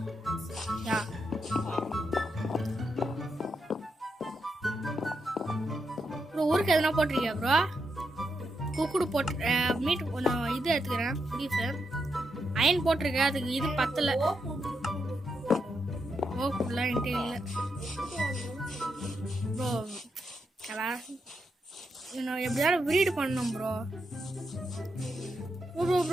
யா ப்ரோ ஊருக்கு எதுனா போட்டிருக்கியா ப்ரோ? குக்குடு போட்டு மீட் நான் இது எடுத்துக்கிறேன். பீஃபு அயன் போட்டிருக்கேன். அதுக்கு இது பத்தலை. ஓ ஃபுல்லாக என்கிட்ட இல்லை ப்ரோ. நான் எப்படியாவது ப்ரீடு பண்ணணும் ப்ரோ.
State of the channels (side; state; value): both; normal; correlation 0.83